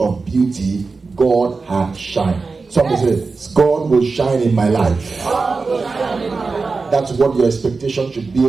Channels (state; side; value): quieter; left; 4.2 dB